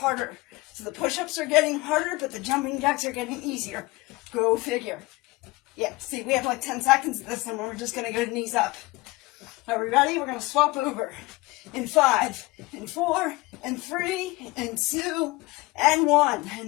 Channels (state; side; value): quieter; right; 22.4 dB